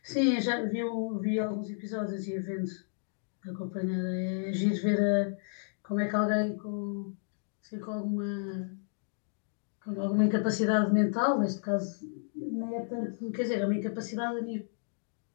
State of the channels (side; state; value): right; silent; digital silence